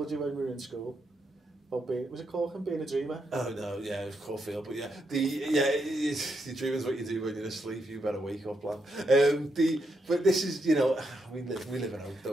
you when we were in school. Was it Corkin being a dreamer? Oh no, yeah, it was Caulfield, but yeah, the dreaming's what you do when you're asleep. You better wake up, lad. But this is, we live in hope,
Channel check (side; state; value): both; normal; correlation 0.81